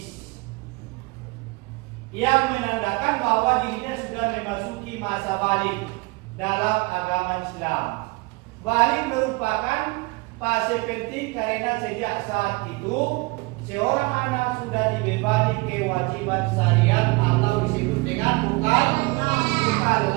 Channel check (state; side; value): quieter; left; 25.6 dB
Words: yang menandakan bahwa dirinya sudah memasuki masa balik dalam agama Islam. Balik merupakan fase penting karena sejak saat itu seorang anak sudah dibebani kewajiban syariat atau disebut dengan mukallaf.